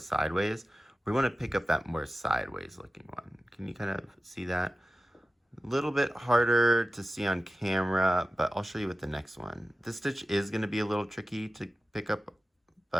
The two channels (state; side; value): normal; both; correlation 0.95